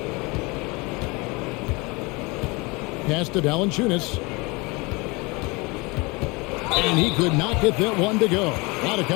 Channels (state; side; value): quieter; right; 26.2 dB